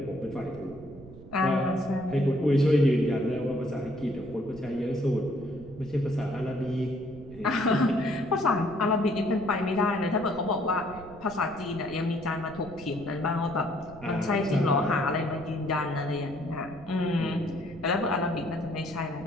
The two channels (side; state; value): right; noise; rumble, 18 dB below the sound